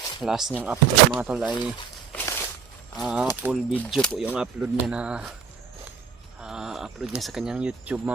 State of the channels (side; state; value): left; quieter; 6.5 dB